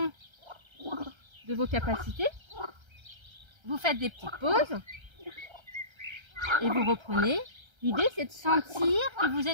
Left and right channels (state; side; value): late; left; 1.3 ms